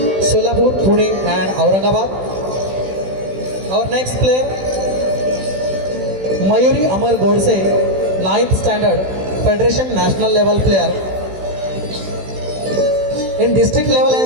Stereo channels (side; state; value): left; late; 16 ms